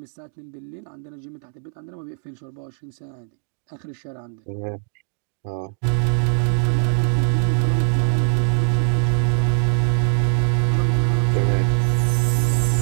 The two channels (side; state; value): left; silent; digital silence